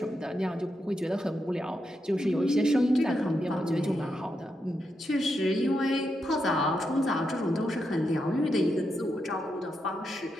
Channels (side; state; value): both; normal; correlation 0.84